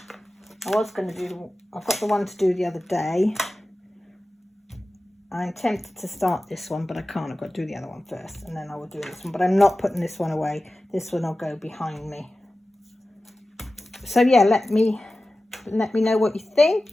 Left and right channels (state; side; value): normal; both; correlation 0.95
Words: I was going to do, I've got the one to do the other day. I'm tempted to start this one, but I can't. I've got to do the other one first, and then I will do this one. But I'm not putting this one away. This one will go behind me. So yeah, let me know what you